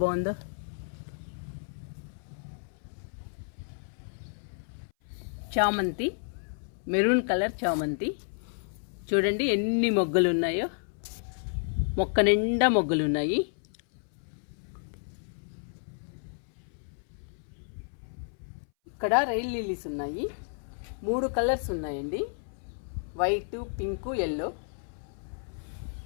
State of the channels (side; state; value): right; silent; 57 dB below the other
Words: చామంతి, మెరూన్ కలర్ చామంతి, చూడండి ఎన్ని మొగ్గలు ఉన్నాయో. మొక్క నిండా మొగ్గలు ఉన్నాయి. ఇక్కడ రైల్ లిల్లీస్ ఉన్నాయి. 3 కలర్స్ ఉన్నాయండి, వైట్, పింక్, ఎల్లో.